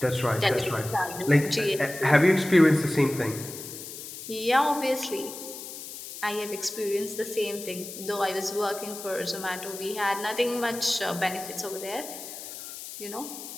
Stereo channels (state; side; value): noise; left; hiss, 11 dB below the sound